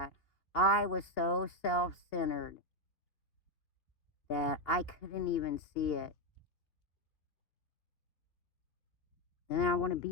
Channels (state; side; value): late; right; 2.8 ms